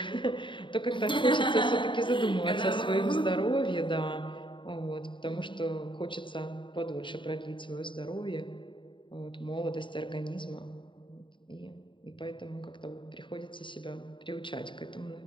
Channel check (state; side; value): late; right; 0.24 ms